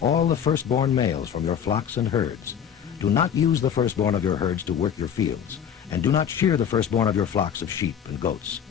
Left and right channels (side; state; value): right; quieter; 8.5 dB